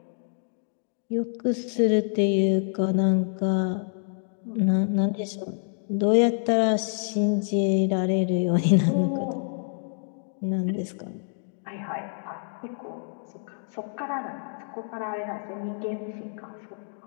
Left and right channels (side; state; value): right; silent; digital silence